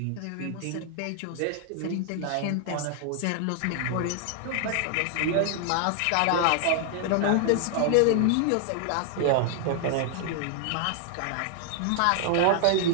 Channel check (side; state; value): both; different; correlation 0.00